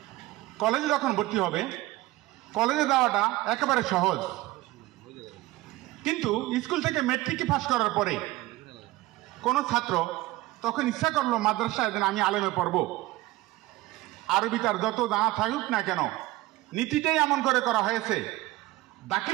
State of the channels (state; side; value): quieter; left; 18.3 dB